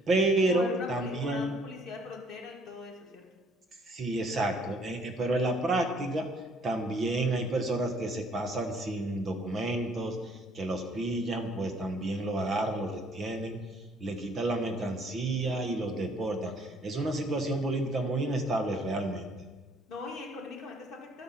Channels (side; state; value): both; normal; correlation 0.62